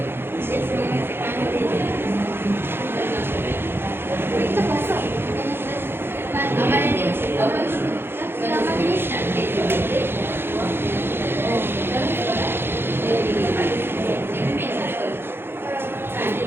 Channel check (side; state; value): left; late; 0.11 ms